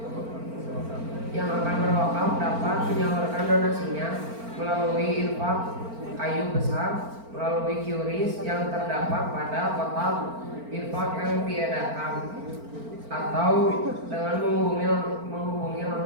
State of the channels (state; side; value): late; left; 4.4 ms